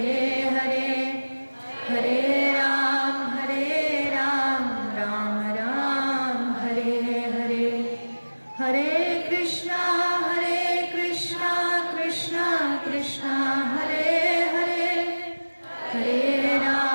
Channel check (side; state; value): both; inverted; correlation -1.00